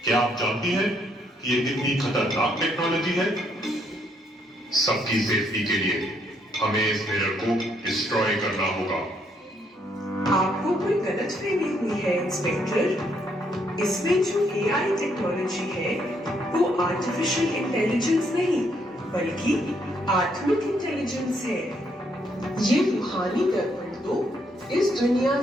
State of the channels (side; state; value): both; normal; correlation 0.72